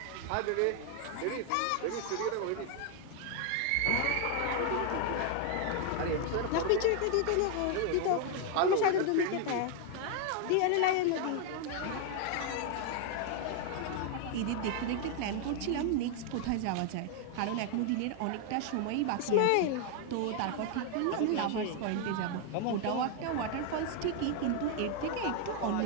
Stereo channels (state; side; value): different; both; correlation 0.00